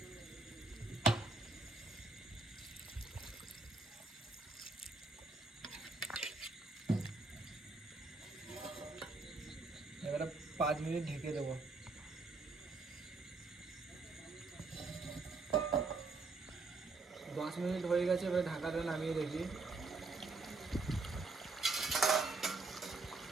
এবারে 5 মিনিট ঢেকে দেবো। 10 মিনিট হয়ে গেছে, এবারে ঢাকাটা নামিয়ে দেখি।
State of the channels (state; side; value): quieter; left; 3.7 dB